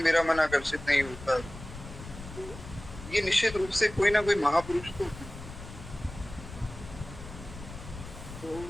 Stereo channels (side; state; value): left; noise; rumble, 13 dB below the sound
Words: मेरा मन आकर्षित नहीं होता है। तो ये निश्चित रूप से कोई ना कोई महापुरुष तो